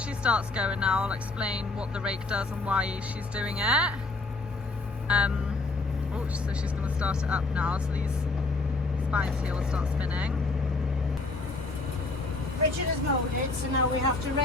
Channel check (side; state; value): right; quieter; 3.4 dB